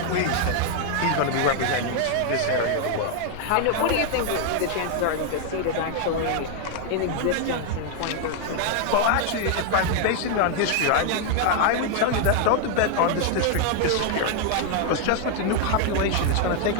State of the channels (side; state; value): both; different; correlation 0.00